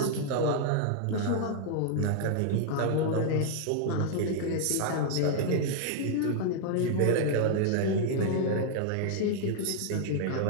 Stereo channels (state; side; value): different; both; correlation -0.01